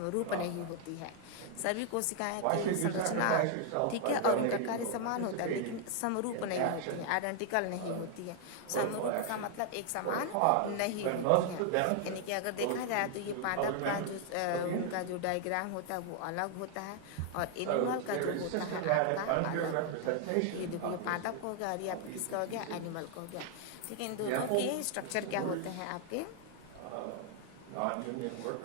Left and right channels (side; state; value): both; different; correlation 0.00